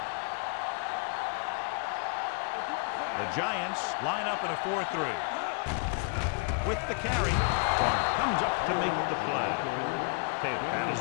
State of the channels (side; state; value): right; quieter; 39.6 dB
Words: Here we go, baby. Let's do our thing. The Giants line up in a 4-3. With the carry, Garner comes up to make the play. Taylor paddles